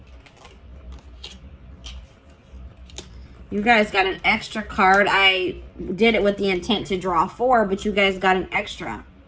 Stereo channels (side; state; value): both; identical; correlation 1.00